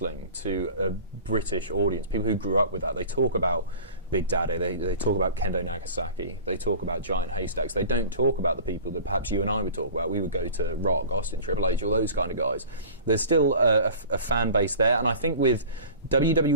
to a British audience, people who grew up with that, they talk about Big Daddy, they talk about Kendo Nagasaki, they talk about Giant Haystacks. They don't talk about the people that perhaps you and I would talk about. We would go to Rock, Austin, Triple H, all those kind of guys. There's still a fan base there, and I think with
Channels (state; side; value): inverted; both; correlation -0.40